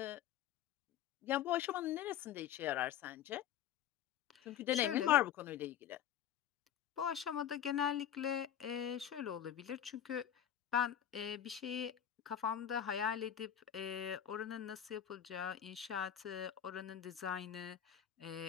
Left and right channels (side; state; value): right; quieter; 9.9 dB